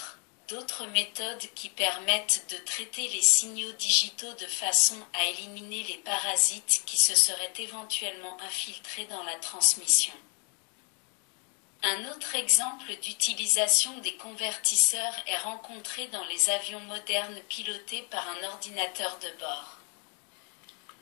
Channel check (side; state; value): right; quieter; 38.2 dB